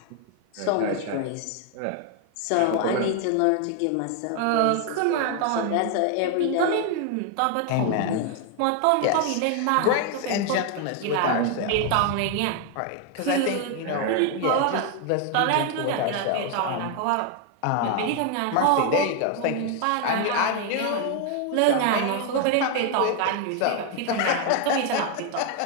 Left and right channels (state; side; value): different; both; correlation 0.00